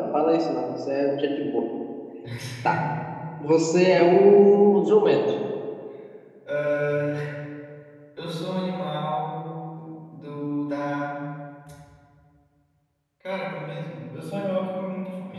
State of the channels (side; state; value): both; identical; correlation 1.00